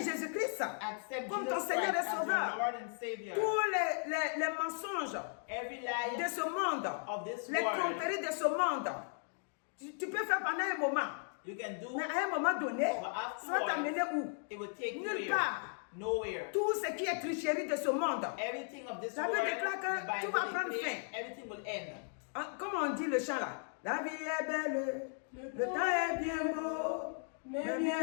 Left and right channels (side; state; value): right; silent; 53 dB below the other